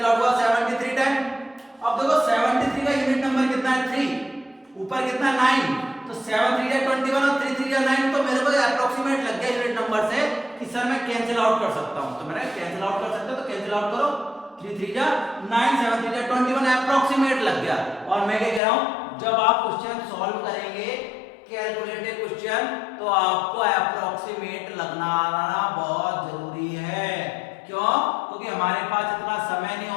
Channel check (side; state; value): right; drops out; at 18.6 s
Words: आउट हुआ, 73 टाइम। अब देखो 73 का यूनिट नंबर कितना है 3, ऊपर कितना 9, तो 7 3 या 21 और 3 3 या 9, तो मेरे को अप्रोक्सीमेट लग गया यूनिट नंबर से कि सर मैं कैंसिल आउट कर सकता हूं। तो मैंने कैंसिल आउट कर सकते हो तो कैंसिल आउट करो, 3 3 या 9, 7 3 या 21 अप्रोक्सीमेट लग गया। और मैं क्या कह रहा हूं, जब आप क्वेश्चन सॉल्व करेंगे कैलकुलेटेड क्वेश्चन, तो आपको अप्रोक्सीमेट लगना बहुत जरूरी है। क्यों? क्योंकि हमारे पास इतना समय नहीं